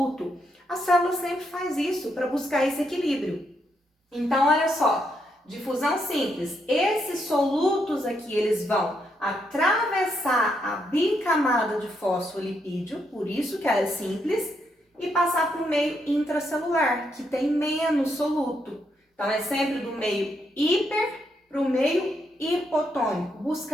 A célula sempre faz isso para buscar esse equilíbrio. Então, olha só, difusão simples, esses solutos aqui, eles vão atravessar a bicamada de fosfolipídio, por isso que ela é simples, e passar para o meio intracelular, que tem menos soluto. Então, é sempre do meio hiper para o meio hipotônico,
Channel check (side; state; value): both; normal; correlation 0.78